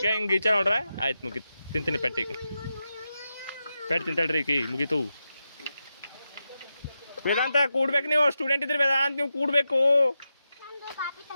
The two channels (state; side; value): inverted; both; correlation -0.89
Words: ಹಿಂಗೆ ಈಚ ನೋಡ್ರ ಆಯ್ತು ಮುಗೀತು ತಿಂತೀನಿ ಪೆಟ್ಟಿಗೆ ಪೆಟ್ಟು ತಿಂತಾಳ್ರಿ ಈಕಿ ಮುಗೀತು ವೇದಾಂತ ಕೂಡ್ಬೇಕು ನೀವು ಸ್ಟೂಡೆಂಟ್ ಇದ್ರಿ ವೇದಾಂತ ನೀವು ಕೂಡಬೇಕು